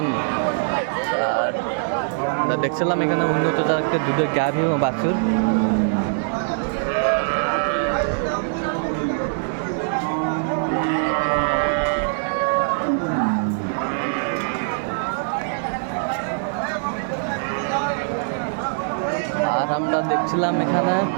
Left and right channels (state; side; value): silent; left; digital silence